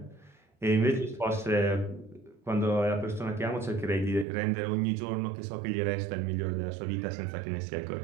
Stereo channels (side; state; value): left; drops out; at 4.2 s